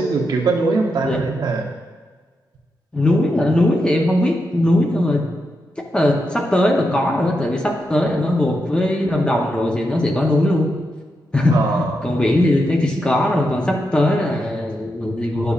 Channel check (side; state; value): both; normal; correlation 0.85